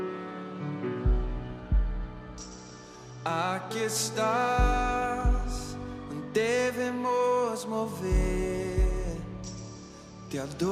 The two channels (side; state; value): both; identical; correlation 1.00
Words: Aqui estás, devemos mover, te